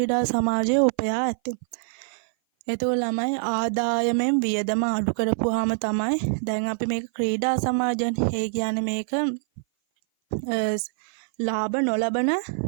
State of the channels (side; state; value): left; silent; 57 dB below the other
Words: සමාජය උපයා ඇත. එතකොට ළමයි ආදායමෙන් වියදම අඩු කරපුවාම තමයි දැන් අපි මේක ක්‍රීඩා සමාජයන්. ඒ කියන්නේ මේක ලාභ නොලබන